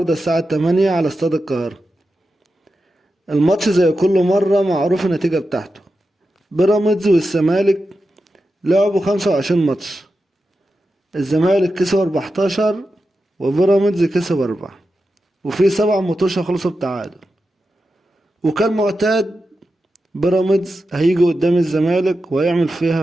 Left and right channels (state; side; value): normal; both; correlation 0.90